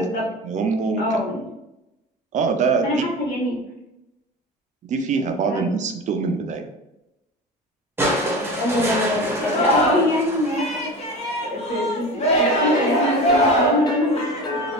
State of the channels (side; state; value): both; normal; correlation 0.31